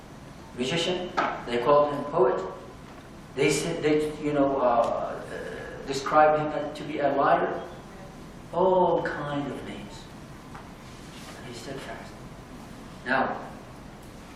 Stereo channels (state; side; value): identical; both; correlation 1.00